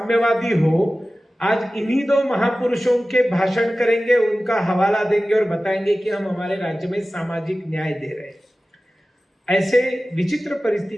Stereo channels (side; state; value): both; normal; correlation 0.96